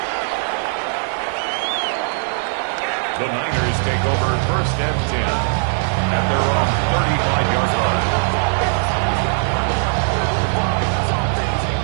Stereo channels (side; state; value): left; silent; digital silence